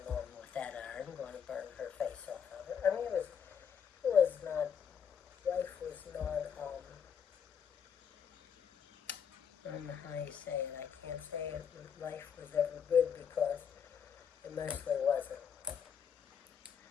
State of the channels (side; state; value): right; quieter; 7.5 dB